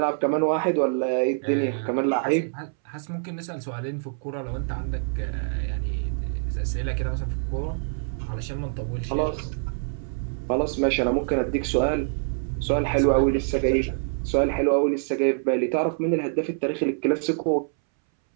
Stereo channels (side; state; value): left; silent; 61 dB below the other